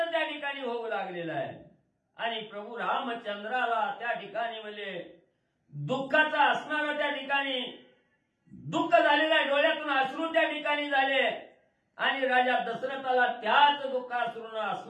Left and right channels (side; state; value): both; identical; correlation 1.00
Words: त्या ठिकाणी होऊ लागलेला आहे. आणि प्रभू रामचंद्राला त्या ठिकाणी म्हणजे दुःखाचा असणारा त्या ठिकाणी दुःख झालेलं आहे. डोळ्यातून अश्रू त्या ठिकाणी झाले. आणि राजा दशरथाला त्याच दुःखाश्रूनं